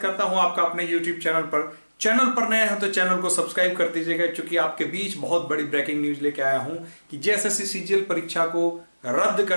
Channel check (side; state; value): both; inverted; correlation -1.00